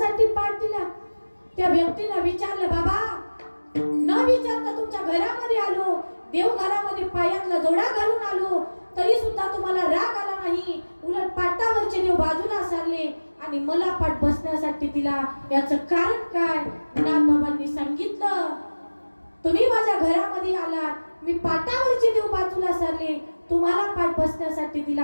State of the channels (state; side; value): inverted; both; correlation -1.00